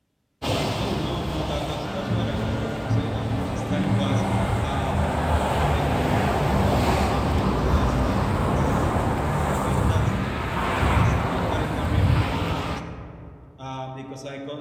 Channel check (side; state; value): both; identical; correlation 1.00